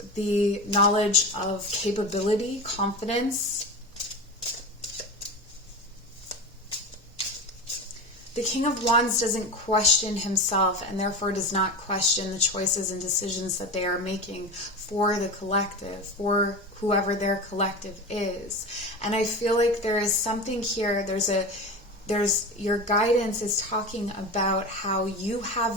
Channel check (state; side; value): normal; both; correlation 0.26